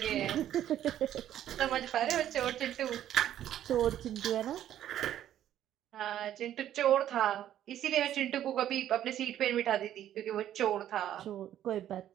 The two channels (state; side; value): quieter; left; 11.5 dB